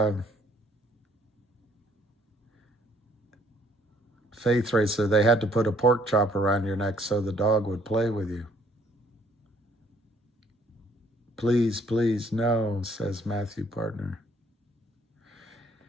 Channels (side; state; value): both; normal; correlation 0.63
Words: Faith Racer, they had to put a pork chop around your neck so the dog would play with you. Please, please, no, says Matthew Partner.